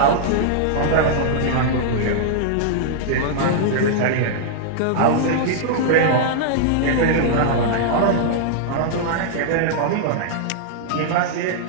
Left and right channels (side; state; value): both; different; correlation -0.01